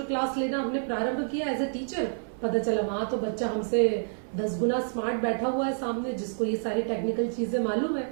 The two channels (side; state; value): left; silent; 59 dB below the other